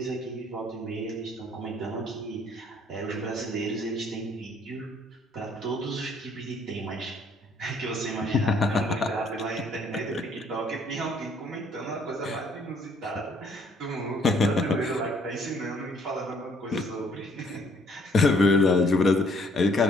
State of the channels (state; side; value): normal; both; correlation 0.64